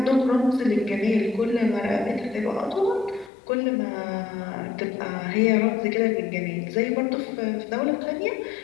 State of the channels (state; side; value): drops out; right; at 3.3 s